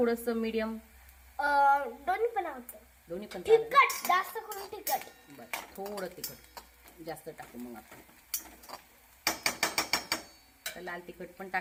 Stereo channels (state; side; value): identical; both; correlation 1.00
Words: मीडियम? दोन्ही पण आवडतं. दोन्ही पण तिखट जास्त करून तिखट. बरं, थोडं तिखट जास्त टाकू. मग आपण लाल तिखट पण